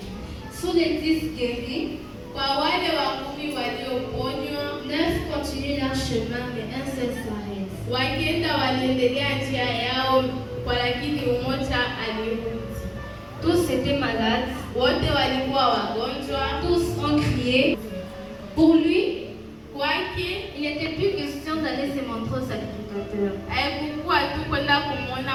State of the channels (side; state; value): both; identical; correlation 1.00